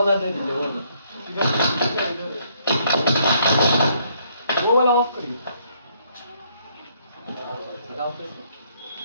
दे दीजिए, वो वाला ऑफ करिए।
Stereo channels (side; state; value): both; inverted; correlation -0.69